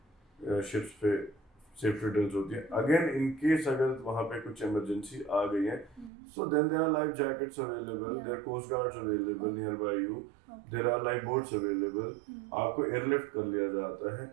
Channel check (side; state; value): left; drops out; at 6.1 s